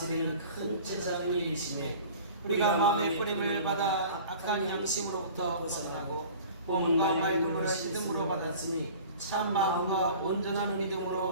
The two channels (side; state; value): both; inverted; correlation -0.43